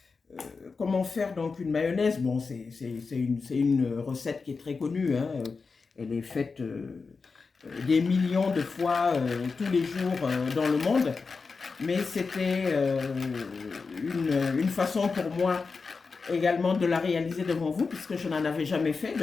comment faire donc une mayonnaise. Bon, c'est une recette qui est très connue. Hein. Elle est faite des millions de fois tous les jours dans le monde. Mais c'était une façon pour moi également de la réaliser devant vous, puisque je n'en avais jamais fait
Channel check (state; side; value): quieter; right; 4.6 dB